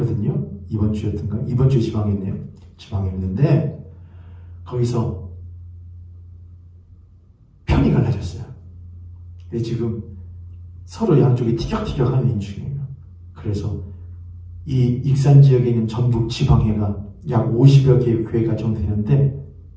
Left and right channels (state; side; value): identical; both; correlation 1.00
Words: 이번 주에 지방회했네요. 지방회했는데 거기서 편이 갈라졌어요. 근데 지금 서로 양쪽이 티격태격하는 인중이에요. 그래서 이 익산 지역에 있는 전북 지방회가 약 50여 개의 교회가 정되는데